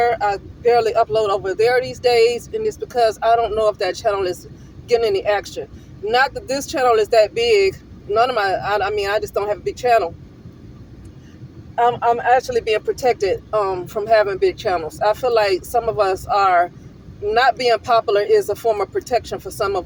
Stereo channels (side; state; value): both; identical; correlation 1.00